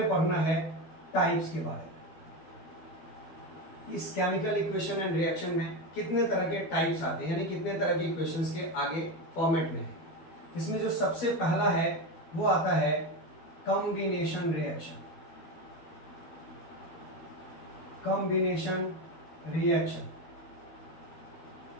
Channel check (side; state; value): right; late; 12 ms